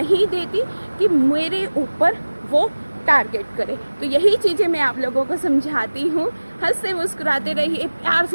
देती कि मेरे ऊपर वो टारगेट करे। तो यही चीज़ें मैं आप लोगों को समझाती हूँ। हंसते मुस्कुराते रहिए, प्यार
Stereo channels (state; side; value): inverted; both; correlation -1.00